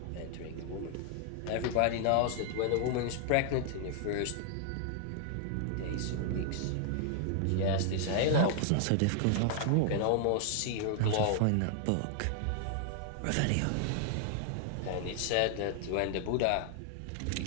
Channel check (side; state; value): both; different; correlation 0.00